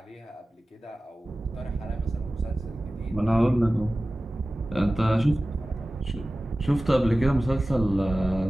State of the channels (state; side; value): normal; both; correlation 0.96